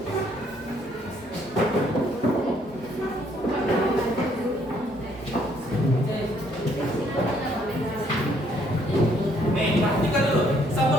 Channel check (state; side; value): normal; both; correlation 0.67